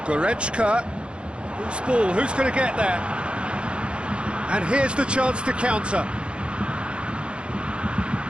Goretzka. Who's ball? Who's going to get there? And here's the chance to counter.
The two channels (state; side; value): late; left; 0.057 ms